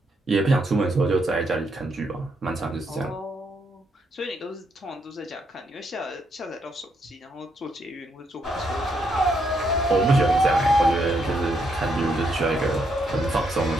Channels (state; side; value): normal; both; correlation 0.76